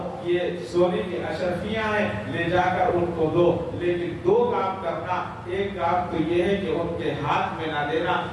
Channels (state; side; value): identical; both; correlation 1.00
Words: یہ سونے کی اشرفیاں ہیں، لے جا کر ان کو دو. لیکن دو کام کرنا، ایک کام تو یہ ہے کہ ان کے ہاتھ میں نہ دینا